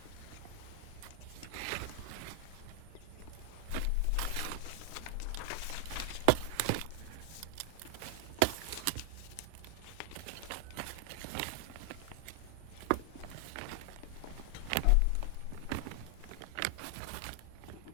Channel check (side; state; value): both; different; correlation 0.00